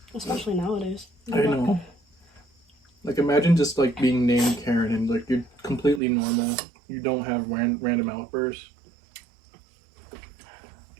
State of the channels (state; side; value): drops out; left; at 6.0 s